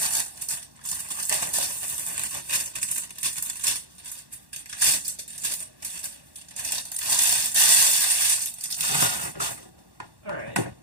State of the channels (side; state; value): left; late; 1.1 ms